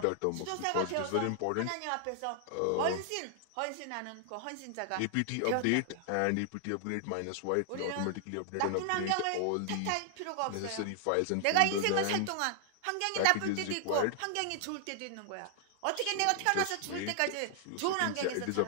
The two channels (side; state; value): both; different; correlation 0.00